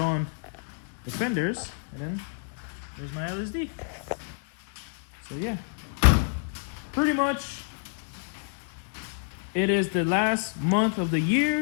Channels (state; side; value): silent; right; digital silence